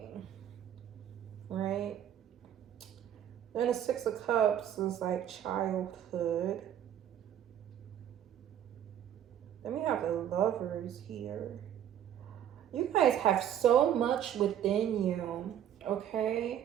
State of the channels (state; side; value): quieter; left; 10.3 dB